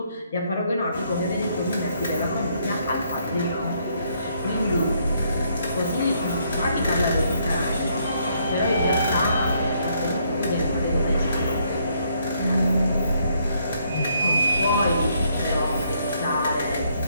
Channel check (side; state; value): both; inverted; correlation -0.71